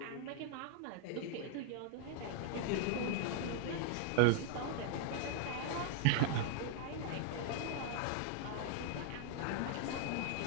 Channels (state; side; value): different; both; correlation 0.00